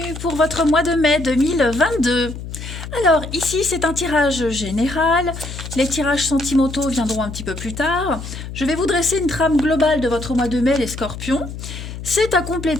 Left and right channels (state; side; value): noise; left; hum, 10 dB below the sound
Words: pour votre mois de mai 2022. Alors ici c'est un tirage général, les tirages sentimentaux viendront un petit peu plus tard. Je vais vous dresser une trame globale de votre mois de mai les Scorpions. C'est à